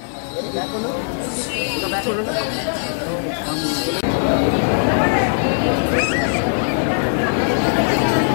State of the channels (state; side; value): silent; right; 61 dB below the other